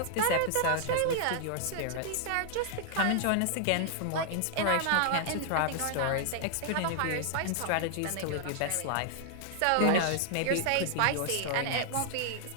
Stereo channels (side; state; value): both; different; correlation 0.00